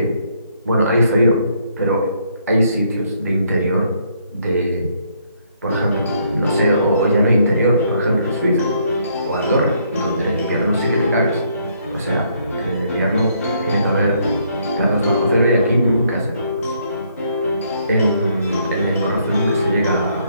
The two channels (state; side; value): inverted; both; correlation -0.69